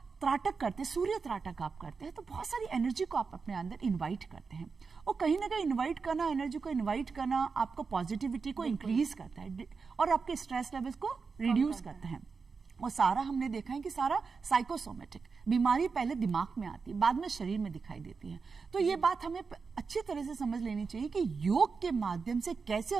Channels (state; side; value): quieter; left; 5.0 dB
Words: त्राटक करते हैं, सूर्य त्राटक आप करते हैं, तो बहुत सारी एनर्जी को आप अपने अंदर इनवाइट करते हैं। और कहीं ना कहीं इनवाइट करना, एनर्जी को इनवाइट करना आपको पॉजिटिविटी को इंक्रीज करता है और आपके स्ट्रेस लेवल्स को रिड्यूस करता है। और सारा हमने देखा है कि सारा साइकोसोमेटिक बीमारी पहले दिमाग में आती है, बाद में शरीर में दिखाई देती है। तो ये बात हमें अच्छी तरह से समझ लेनी चाहिए कि योग के माध्यम से कैसे